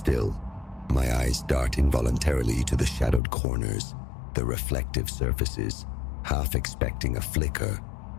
my eyes dart involuntarily to the shadowed corners, the reflective surfaces, half expecting a flicker,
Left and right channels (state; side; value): drops out; right; at 3.2 s